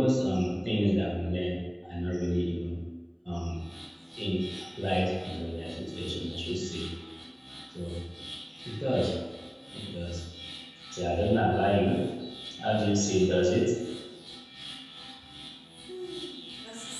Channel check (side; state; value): both; identical; correlation 1.00